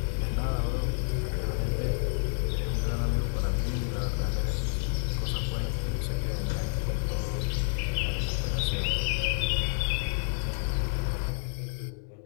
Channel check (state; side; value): silent; right; digital silence